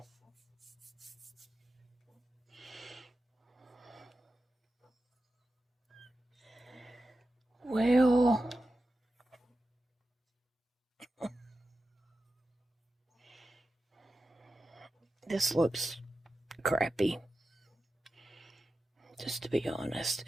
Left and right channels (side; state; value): both; normal; correlation 0.92